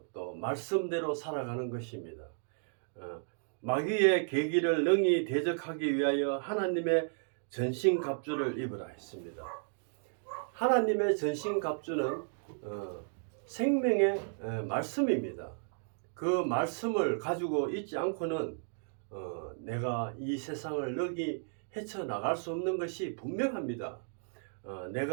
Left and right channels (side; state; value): left; silent; digital silence